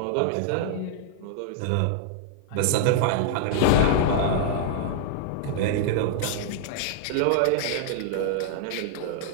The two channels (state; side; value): different; both; correlation -0.01